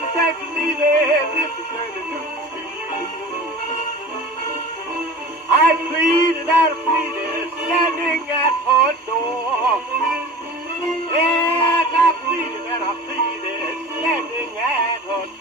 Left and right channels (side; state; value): both; normal; correlation 0.38